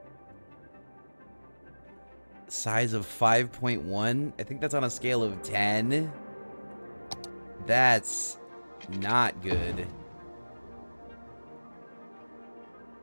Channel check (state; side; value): inverted; both; correlation -1.00